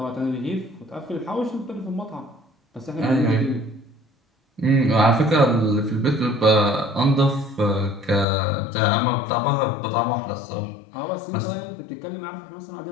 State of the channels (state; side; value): drops out; right; at 8.2 s